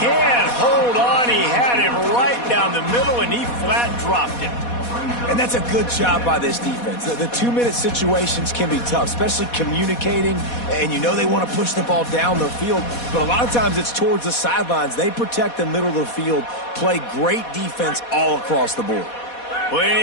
hold on. He had him right down the middle, and he flat dropped it. And that's a good job by this defense. The 2-minute situations can be tough, especially communicating, and you know they want to push the ball down the field, but a lot of times it's towards the sidelines. They protect the middle of the field, play great defense all across the board.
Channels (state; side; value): late; right; 4.2 ms